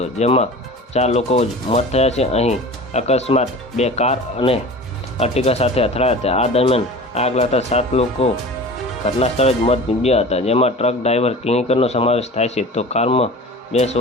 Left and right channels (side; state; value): both; normal; correlation 0.38